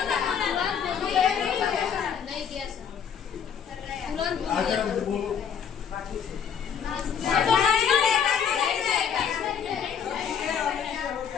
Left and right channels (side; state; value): right; quieter; 7.7 dB